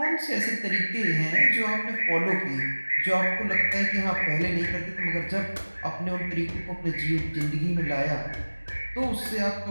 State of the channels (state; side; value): inverted; both; correlation -1.00